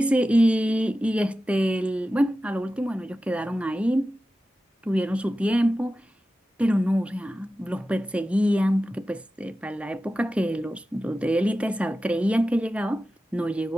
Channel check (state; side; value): normal; both; correlation 0.94